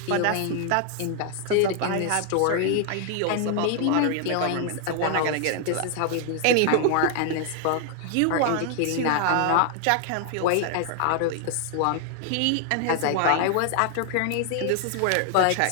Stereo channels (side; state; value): both; different; correlation 0.00